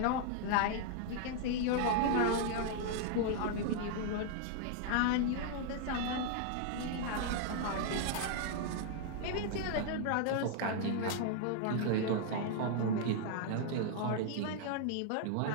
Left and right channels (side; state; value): both; different; correlation 0.00